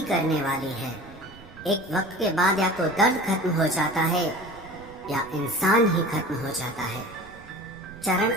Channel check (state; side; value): noise; right; rumble, 21 dB below the sound